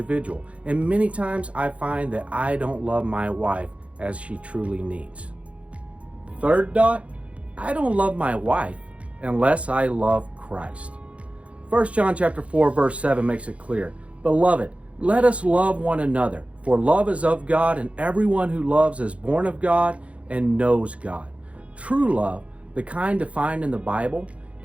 And many times I find that I don't love my wife as she truly needs. Third dot, I don't love my wife unless I love Christ. 1 John chapter 4, verse 7 makes it clear. Beloved, let us love one another, for love is of God, and everyone who loves is born of God and knows God. True love, the kind defined in the Bible,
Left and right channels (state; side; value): late; left; 0.063 ms